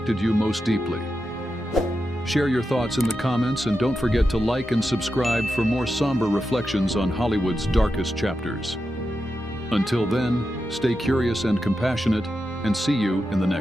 you most deeply? Share your thoughts in the comments, and don't forget to like and subscribe for more somber reflections on Hollywood's darkest chapters. Until then, stay curious and compassionate, and see you in the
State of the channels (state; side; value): normal; both; correlation 0.89